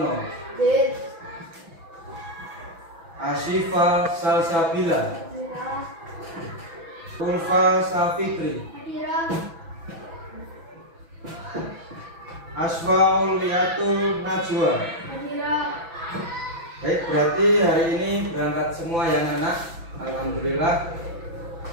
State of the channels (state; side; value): late; left; 6.0 ms